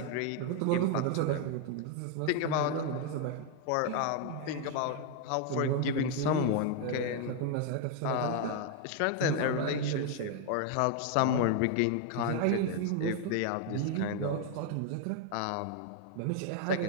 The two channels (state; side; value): different; both; correlation 0.01